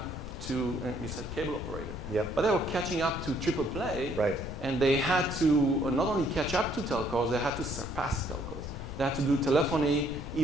to, you said cable operator. Yep. But they were catching up to triple play. Right. And they had to not only catch up to telcos, they had to surpass telcos. They had to do telephony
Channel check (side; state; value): left; noise; rumble, 9 dB below the sound